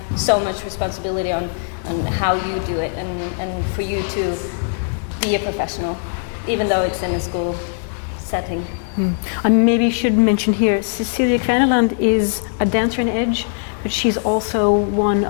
so much responsibility on how you do it, and for you to be a professional, even though it's in a school setting. I maybe should mention here, Cecilia Kraneland is a dancer in Edge, but she's also one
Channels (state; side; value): silent; right; digital silence